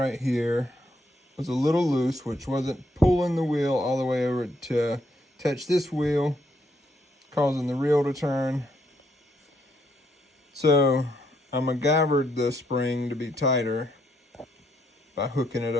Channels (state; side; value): normal; both; correlation 0.74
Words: here was a little loose, which wasn't pulling the wheel all the way over to touch this wheel, causing the reel to turn. So I MacGyvered the spring to be tighter by hooking it